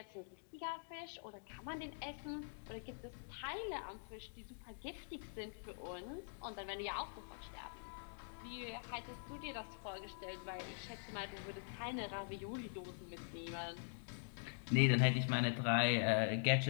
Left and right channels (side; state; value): right; silent; digital silence